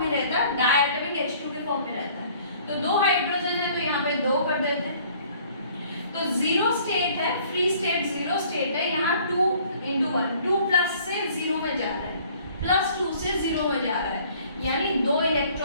में रहता है, डायटोमिक H2 के फॉर्म में रहता है। तो 2 हाइड्रोजन है तो यहाँ पे 2 कर देते हैं। तो 0 स्टेट है, फ्री स्टेट 0 स्टेट है, यहाँ 2 × 1, 2+ से 0 में जा रहा है, +2 से 0 में जा रहा है, यानी 2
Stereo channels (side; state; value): both; inverted; correlation -0.56